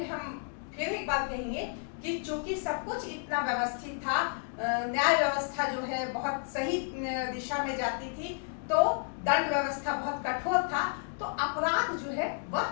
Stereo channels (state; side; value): silent; right; 57 dB below the other